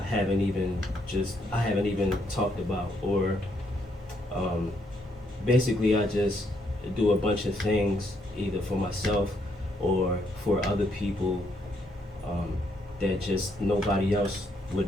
haven't even talked about, or basically I just do a bunch of things either for myself or for other people that just nobody else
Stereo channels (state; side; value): normal; both; correlation 0.74